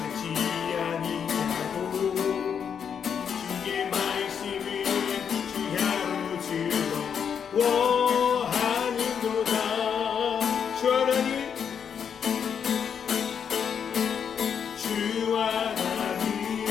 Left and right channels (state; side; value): quieter; right; 7.4 dB